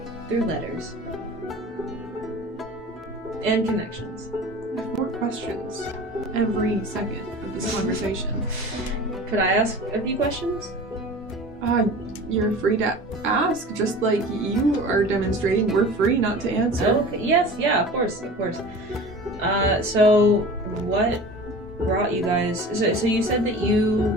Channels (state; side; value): normal; both; correlation 0.38